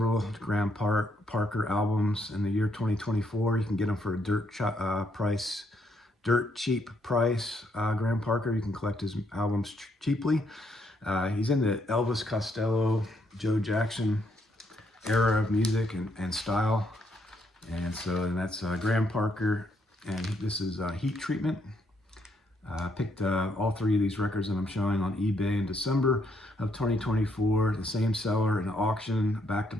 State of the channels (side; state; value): both; normal; correlation 0.73